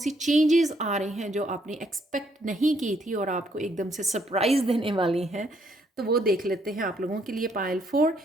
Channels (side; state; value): both; normal; correlation 0.71